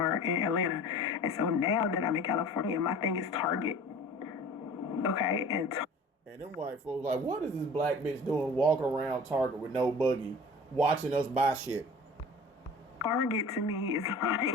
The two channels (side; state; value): both; normal; correlation 0.43